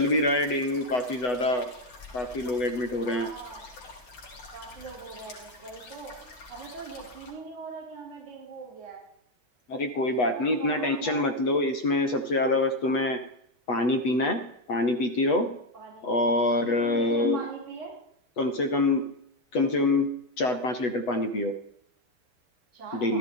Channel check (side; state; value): right; late; 8.0 ms